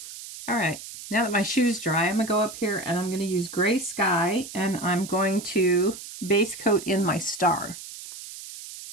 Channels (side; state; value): right; noise; hiss, 13 dB below the sound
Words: All right, now that my shoe's dry, I'm gonna go up here and I'm gonna use Gray Sky, and I'm going to base coat in my star.